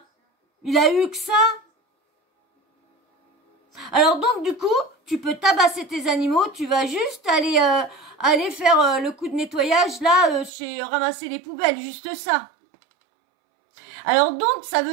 Il a eu que ça. Alors donc, du coup, tu peux tabasser tes animaux, tu vas juste aller faire le coup de nettoyage, là, chez ramasser les poubelles, juste ça. Alors donc, ça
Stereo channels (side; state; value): left; drops out; at 10.5 s